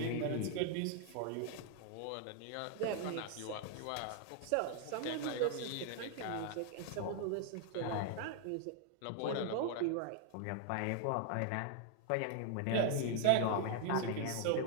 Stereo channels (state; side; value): different; both; correlation 0.00